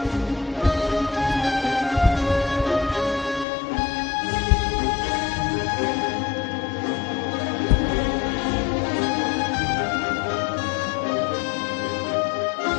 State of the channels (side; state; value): right; drops out; at 3.5 s